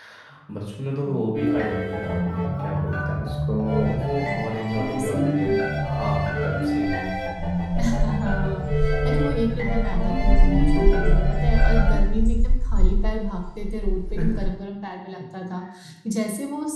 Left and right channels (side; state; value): both; identical; correlation 1.00